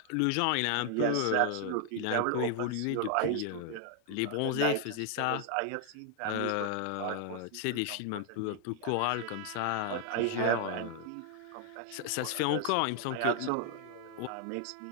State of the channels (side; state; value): both; different; correlation 0.00